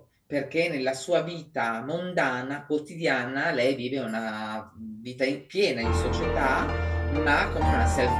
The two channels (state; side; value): identical; both; correlation 1.00